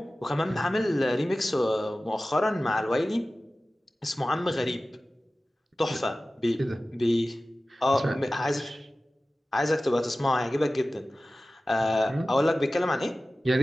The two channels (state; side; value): normal; both; correlation 0.96